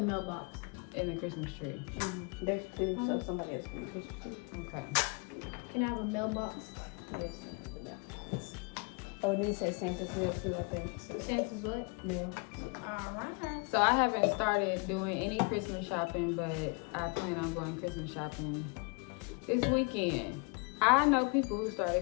mailbox. and the Christmas tree. There's two, so somebody else can be Christmas tree. Okay. Can I have a mailbox? Yes, that's the mailbox. Oh, and then it says Santa's mail too, I think. So, Santa's what? mail. Alright. So I haven't started doing any Christmas shopping, but I plan on going Christmas shopping this weekend. I know people who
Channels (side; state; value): right; quieter; 32.5 dB